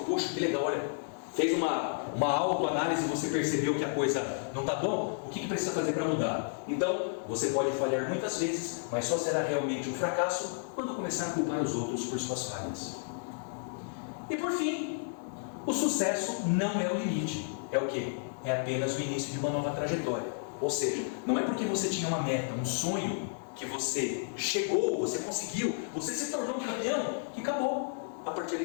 poxa, que legal, olha, fez uma autoanálise e você percebeu que a coisa não está bom, o que precisa fazer para mudar? Então, você pode falhar muitas vezes, mas só será realmente um fracasso quando começar a culpar os outros por suas falhas. E por fim, o sucesso não é o limite. É o quê? É apenas o início de uma nova trajetória. Ou seja, não é porque você tinha uma meta, um sonho, que você chegou, você conseguiu, você se tornou campeão, que acabou. A partir daí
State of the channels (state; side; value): silent; right; digital silence